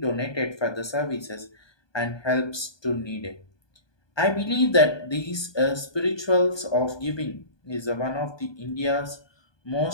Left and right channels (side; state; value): right; late; 1.2 ms